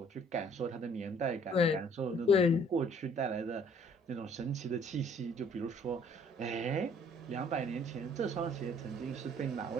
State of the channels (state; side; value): normal; both; correlation 0.58